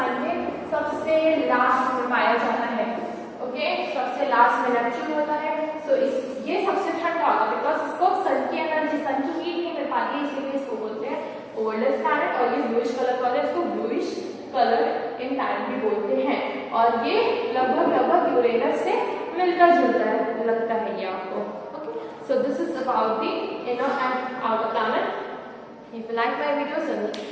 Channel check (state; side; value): identical; both; correlation 1.00